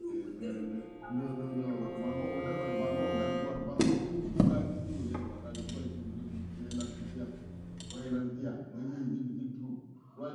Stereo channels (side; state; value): both; identical; correlation 1.00